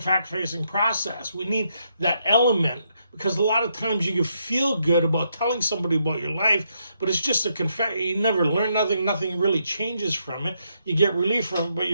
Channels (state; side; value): inverted; both; correlation -0.77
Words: process. We need that element because a lot of times you can feel good about telling somebody about your life, but it's just a confession. You never learn nothing. Nothing really changes from it. You get relief from it, but